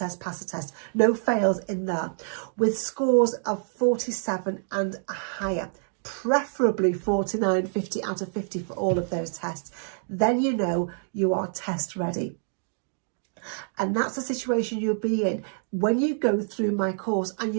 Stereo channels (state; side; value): silent; left; digital silence